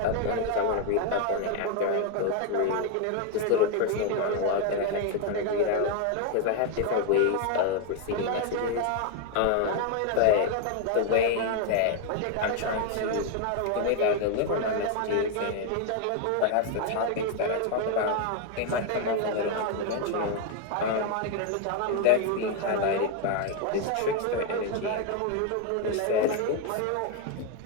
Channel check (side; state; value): both; different; correlation 0.01